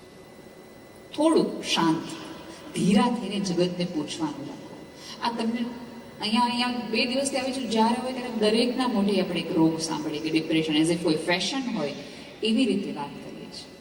થોડું શાંત ધીરા થઈને જગતને પૂછવાનું રાખો. આ તમને અહીંયા 2 દિવસથી આવી છું, જ્યારે હોય ત્યારે દરેકના મોઢે આપણે એક રોગ સાંભળીએ કે ડિપ્રેશન, એઝ ઇફ કોઈ ફેશન હોય એવી રીતે વાત કરીએ છીએ.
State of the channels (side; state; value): both; identical; correlation 1.00